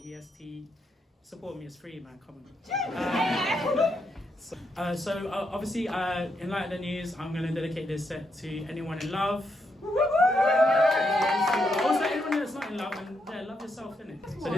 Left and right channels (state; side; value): normal; both; correlation 0.80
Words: EST. Support me, it's free, man. Come on. Obviously, in light of the news, I'm going to dedicate this set to anyone in love. Also, anyone that's not in love, and love yourself, innit? So